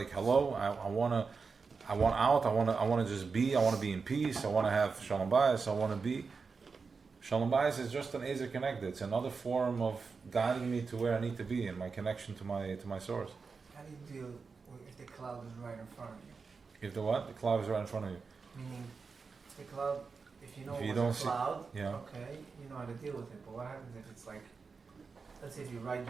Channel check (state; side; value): quieter; left; 4.9 dB